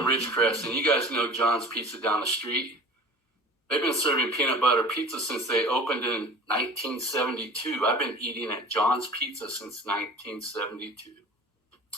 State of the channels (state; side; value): normal; both; correlation 0.42